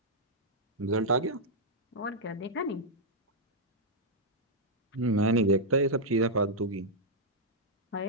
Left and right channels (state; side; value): normal; both; correlation -0.07